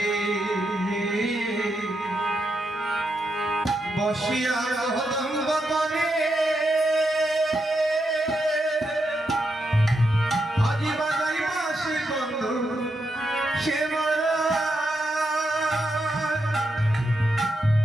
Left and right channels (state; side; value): normal; both; correlation 0.84